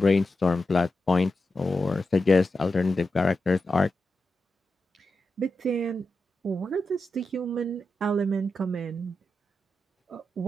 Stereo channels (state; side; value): normal; both; correlation 0.89